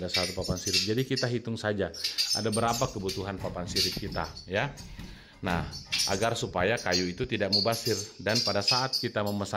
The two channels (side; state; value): both; identical; correlation 1.00